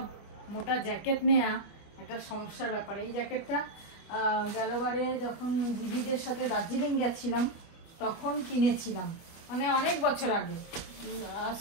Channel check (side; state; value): right; late; 25 ms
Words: মোটা জ্যাকেট নেওয়া একটা সমস্যার ব্যাপার। এই জ্যাকেটটা গেলবারে যখন দিদিদের সাথে দার্জিলিং গেছিলাম তখন কিনেছিলাম, মানে অনেক বছর আগে, আজ